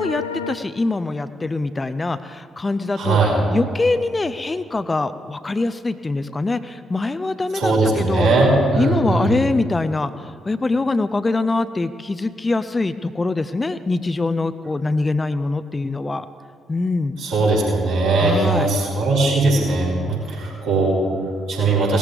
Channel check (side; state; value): both; normal; correlation 0.78